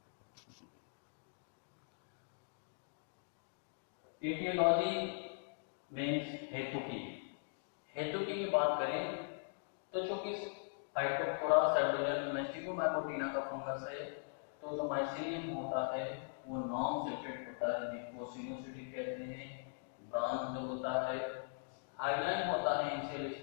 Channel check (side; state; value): right; silent; digital silence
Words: एटियोलॉजी मीन्स हेतुकी। हेतुकी की बात करें तो चूंकि फाइटोप्थोरा सब डिवीजन में स्टिग्मोमाइकोटिना का फंगस है, तो जो माइसीलियम होता है वो नॉन सेपरेट होता है, जिसको सिनोसिटिक कहते हैं। ब्रांच होता है, हाइलाइन होता है इनिशियल